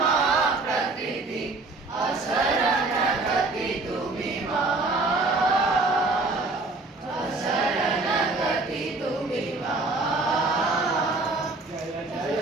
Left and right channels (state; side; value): quieter; left; 3.4 dB